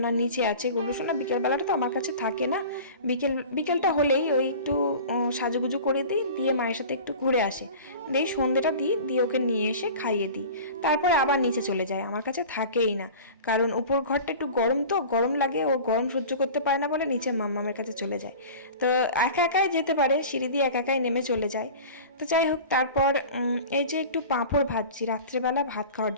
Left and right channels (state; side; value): inverted; both; correlation -0.38